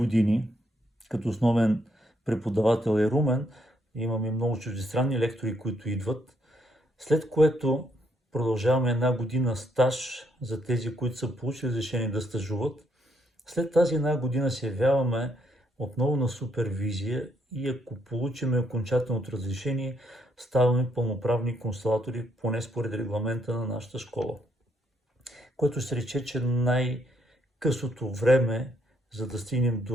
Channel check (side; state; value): both; normal; correlation 0.74